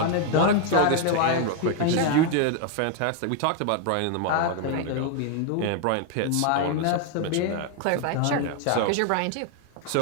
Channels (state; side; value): different; both; correlation 0.00